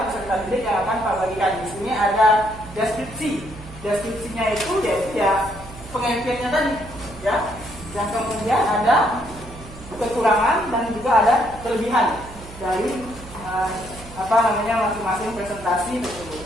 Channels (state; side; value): noise; right; hum, 16 dB below the sound